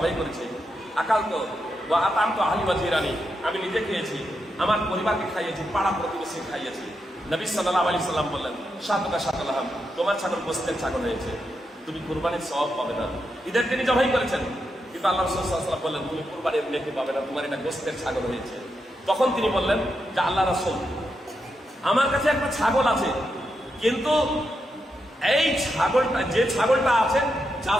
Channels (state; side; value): normal; both; correlation 0.85